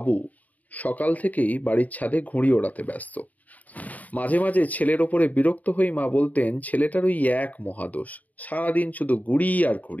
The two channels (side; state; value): right; late; 0.075 ms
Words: সকাল থেকেই বাড়ির ছাদে ঘুড়ি ওড়াতে ব্যস্ত। মাঝে মাঝে ছেলের ওপরে বিরক্ত হয়ে মা বলতেন, ছেলেটার ওই এক মহাদোষ, সারাদিন শুধু ঘুড়ি আর